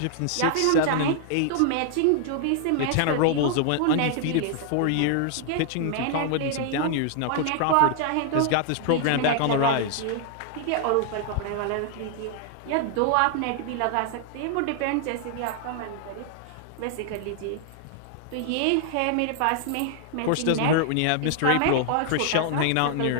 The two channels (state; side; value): different; both; correlation 0.00